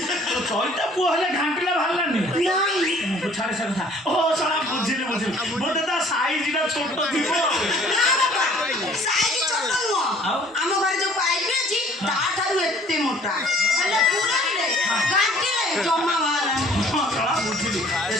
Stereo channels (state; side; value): normal; both; correlation 0.55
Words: ଚଇଟା ପୁଅ ହେଲେ ଘାଣ୍ଟିଲା ବାହାରିଲାନି ନାଇଁ ଛାଡେ ସେ କଥା। ଓ ଶଳା ବୁଝିଲି ବୋଧେ ତା ସାଇଜଟା ଛୋଟ ଥିବ। ନା ବାପା ସାଇଜ ଛୋଟ ନୁହଁ। ଆମ ଘରେ ଯୋଉ ପାଇପ ଅଛି ତାଠାରୁ ଏତେ ମୋଟା ହେଲେ ପୁରେଇଲେ ଘାଣ୍ଟିଲେ ଜମା ବାହାରିଲାନି। ଶଳା ବୁଝିଲି ଏ